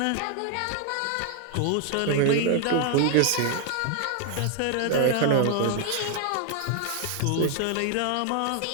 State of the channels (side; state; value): both; different; correlation 0.00